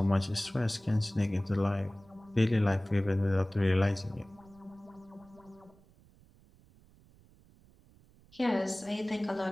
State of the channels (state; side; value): noise; right; rumble, 27 dB below the sound